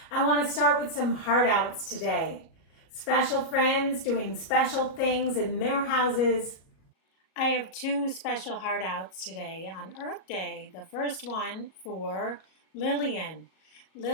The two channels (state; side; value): late; right; 37 ms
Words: I want to start with some heart outs today. Special friends doing special things in their houses. I have two special heart outs today on Earth Day. The first one for Lillian.